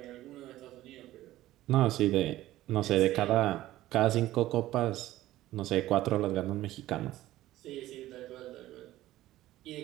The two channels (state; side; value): quieter; left; 15.3 dB